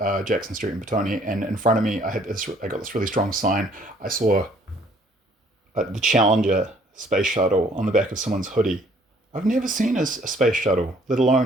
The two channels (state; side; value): normal; both; correlation 0.61